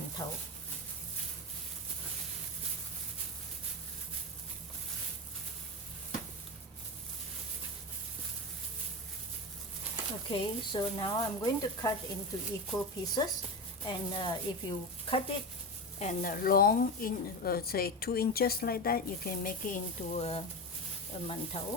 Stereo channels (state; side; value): normal; both; correlation 0.20